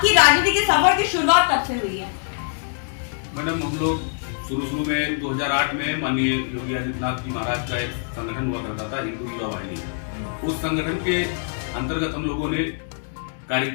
राजनीति के सफर की शुरुआत कब से हुई है? मैडम, हम लोग शुरू में 2008 में माननीय योगी आदित्यनाथ जी महाराज का एक संगठन हुआ करता था, हिंदू युवा वाहिनी। उस संगठन के अंतर्गत हम लोगों ने कार्य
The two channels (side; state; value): right; silent; digital silence